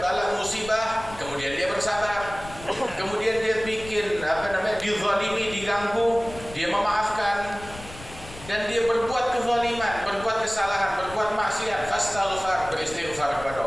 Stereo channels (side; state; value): left; noise; rumble, 16 dB below the sound